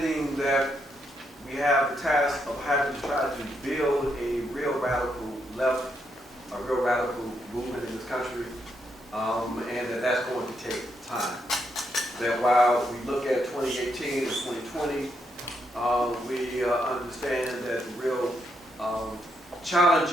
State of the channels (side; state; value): both; normal; correlation 0.79